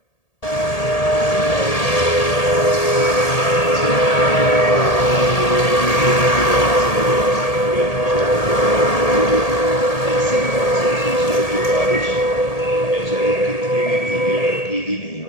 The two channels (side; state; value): right; late; 1.8 ms